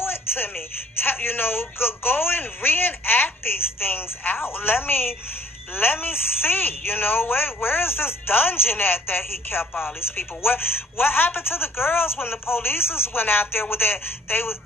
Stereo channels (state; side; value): normal; both; correlation 0.56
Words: it to me. Go and reenact these things out. Let me see, where is this dungeon at that he kept all these people? What happened to the girls when the police went out there with that?